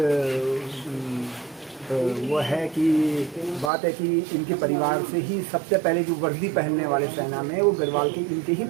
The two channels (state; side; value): drops out; left; at 3.7 s